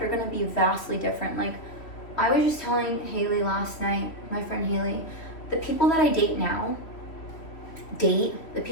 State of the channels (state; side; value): late; right; 3.1 ms